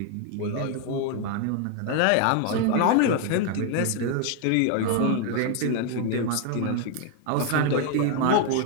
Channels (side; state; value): both; different; correlation 0.00